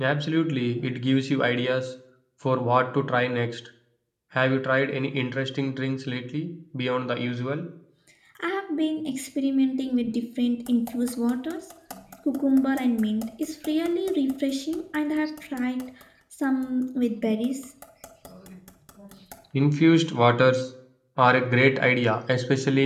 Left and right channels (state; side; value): identical; both; correlation 1.00